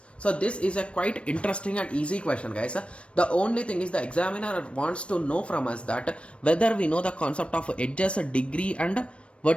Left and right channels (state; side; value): late; right; 0.060 ms